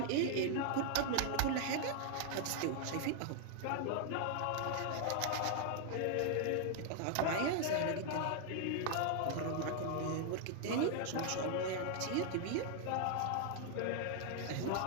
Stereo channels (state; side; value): different; both; correlation 0.00